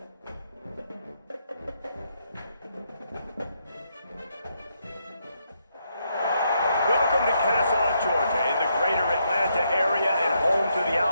Welcome to Kennesaw, Georgia, in the greater Atlanta area and home to the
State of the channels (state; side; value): inverted; both; correlation -0.77